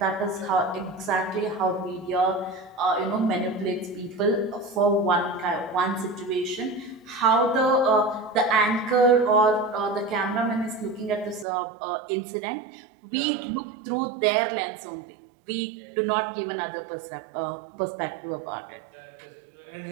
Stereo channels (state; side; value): drops out; left; at 11.5 s